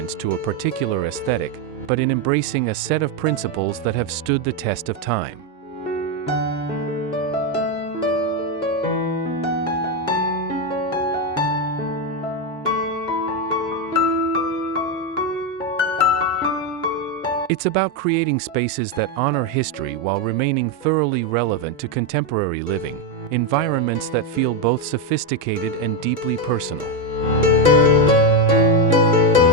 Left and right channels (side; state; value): both; normal; correlation 0.07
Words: to a particular aesthetic, but in embracing a set of principles that have stood the test of time. It's about creating spaces that honor history while remaining thoroughly relevant to contemporary living, environments that feel both sophisticated and deeply personal.